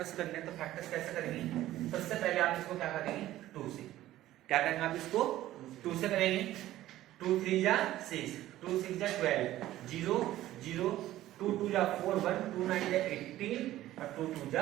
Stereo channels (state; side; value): quieter; left; 14.6 dB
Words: करने हैं। तो फैक्टर्स कैसे करेंगे, सबसे पहले आप इसको क्या करेंगे, 2 से क्या करेंगे, आप इसको 2 से करेंगे। 2 3 जा 6, 2 6 जा 12, 0 0, 2 2 जा 4 1, 2 9 जा 18 और 2 2